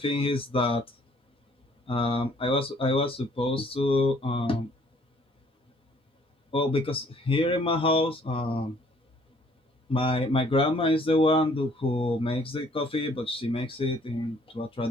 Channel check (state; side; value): normal; both; correlation 0.61